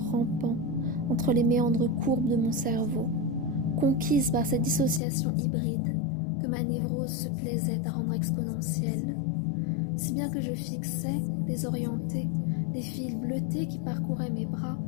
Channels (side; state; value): right; drops out; at 5.0 s